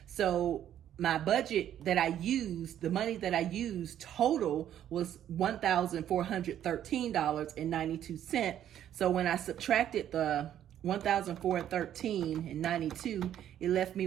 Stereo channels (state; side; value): quieter; left; 10.8 dB